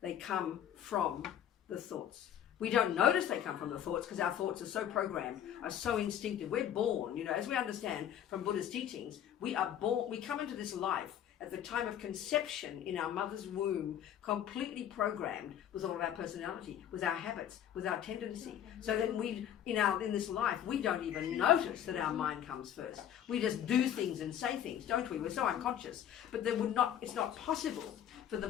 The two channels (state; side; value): quieter; right; 10.2 dB